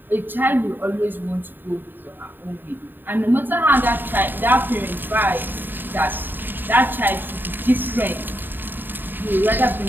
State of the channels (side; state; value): left; late; 0.093 ms